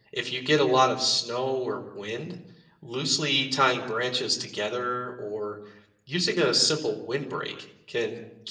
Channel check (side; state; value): both; identical; correlation 1.00